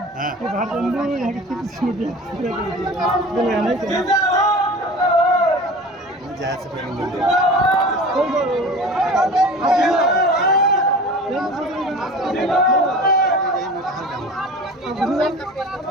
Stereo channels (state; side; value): normal; both; correlation 0.38